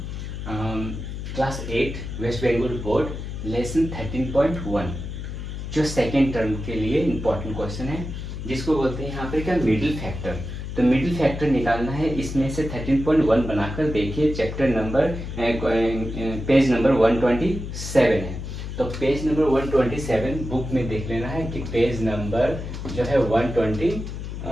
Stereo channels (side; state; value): left; noise; hum, 7 dB below the sound